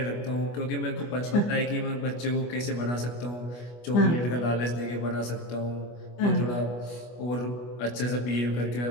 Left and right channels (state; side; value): late; right; 25 ms